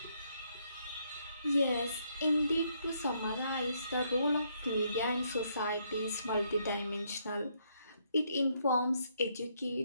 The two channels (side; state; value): both; inverted; correlation -0.73